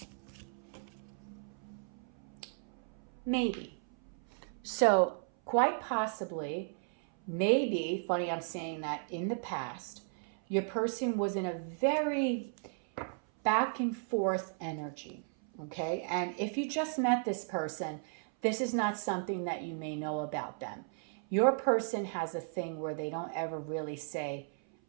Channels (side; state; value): left; silent; 54 dB below the other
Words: Maybe. So quite possibly, maybe, funny I'm saying that, in the past, your person was in a very back and forth energy. Okay. And if you just met this person, this is not something that you may know about them. Your person has a thing where they don't ever really say